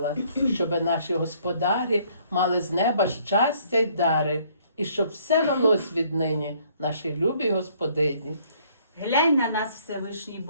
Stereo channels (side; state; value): both; inverted; correlation -0.63